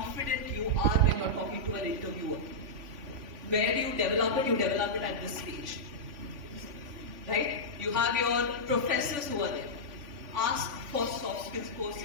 you are when you're talking to an interviewer. Where do you develop it? You develop it at this stage. Right? You have your professors who are there. Ask for soft skills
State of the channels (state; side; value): late; left; 3.5 ms